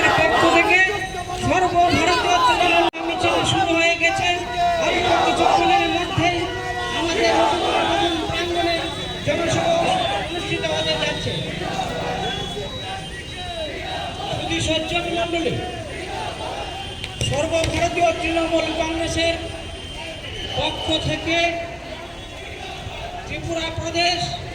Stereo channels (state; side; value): identical; both; correlation 1.00